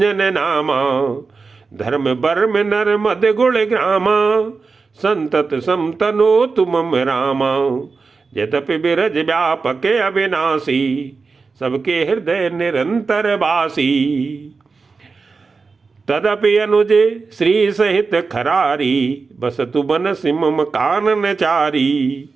नामा। धर्म बर्म नर मद गुण ग्रामा संतत समतनो तुम रामा। यद्यपि बिरज व्यापक अविनाशी सबके हृदय निरंतर वासी। तदपि अनुजे श्री सहित खरारी बसतु बन सिमम कानन चारी।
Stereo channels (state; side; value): quieter; left; 4.5 dB